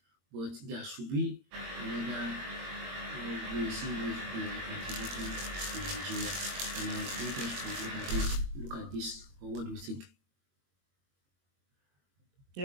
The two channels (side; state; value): left; late; 22 ms